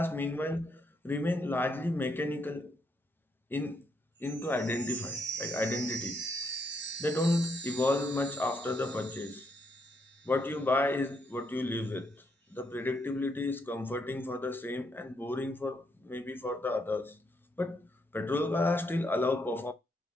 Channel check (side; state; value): both; normal; correlation 0.76